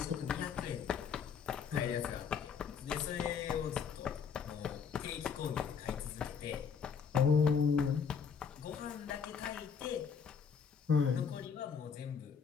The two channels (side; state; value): right; quieter; 6.6 dB